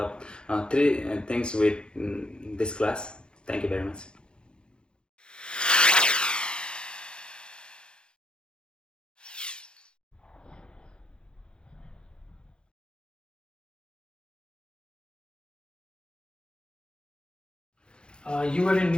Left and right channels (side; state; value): right; late; 0.050 ms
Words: of three things with this class. Thank you very much. You were in